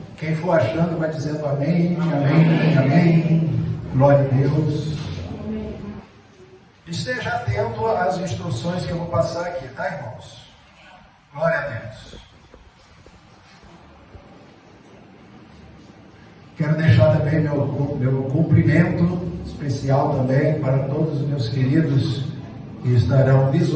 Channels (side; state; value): both; identical; correlation 1.00